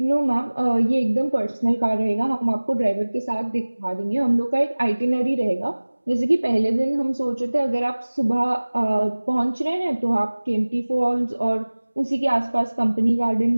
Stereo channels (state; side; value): inverted; both; correlation -1.00